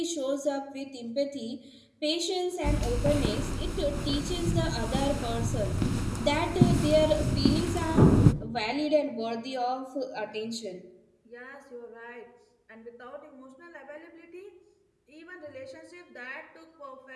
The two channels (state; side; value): identical; both; correlation 1.00